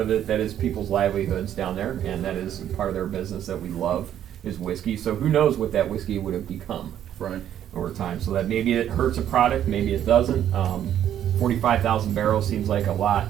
of it, that is people's livelihoods down there, and that is part of their business that we love is whiskey. So who knows what that whiskey would have become Right. over time. So that maybe it hurts a product, maybe it doesn't. 45,000 barrels seems like a lot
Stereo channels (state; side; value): quieter; left; 10.6 dB